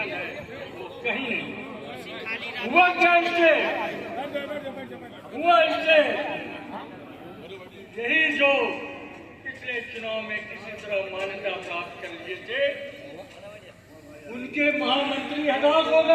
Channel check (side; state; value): both; identical; correlation 1.00